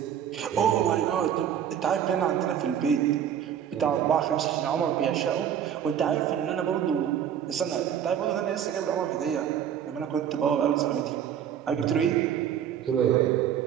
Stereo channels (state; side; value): quieter; left; 9.3 dB